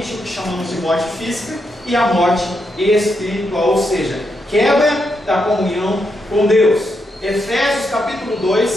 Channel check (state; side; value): normal; both; correlation 0.82